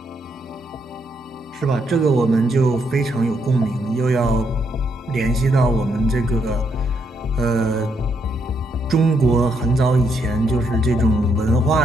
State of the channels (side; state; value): both; normal; correlation 0.76